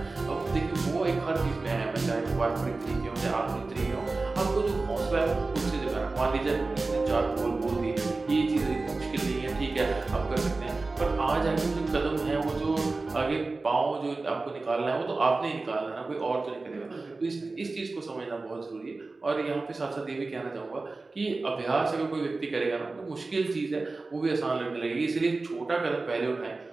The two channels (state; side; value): quieter; left; 3.5 dB